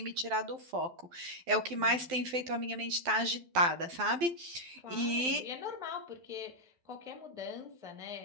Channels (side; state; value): left; late; 12 ms